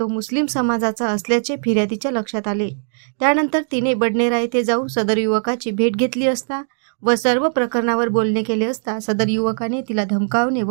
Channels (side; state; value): left; silent; digital silence